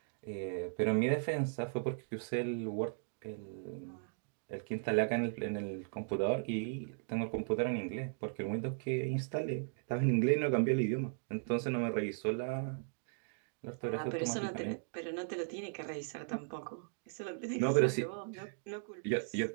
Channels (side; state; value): left; silent; digital silence